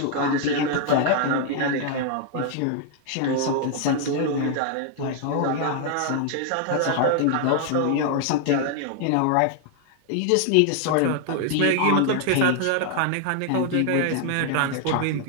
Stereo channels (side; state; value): both; different; correlation 0.00